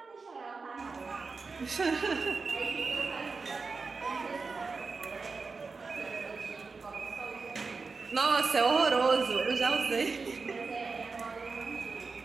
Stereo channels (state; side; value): quieter; left; 4.4 dB